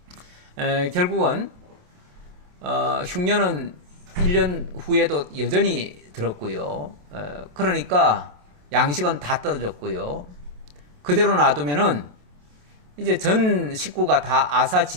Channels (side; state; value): left; late; 27 ms